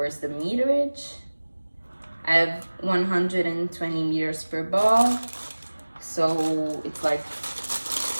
the meterage? I have 120 meters per ball, so it's like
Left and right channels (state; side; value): inverted; both; correlation -1.00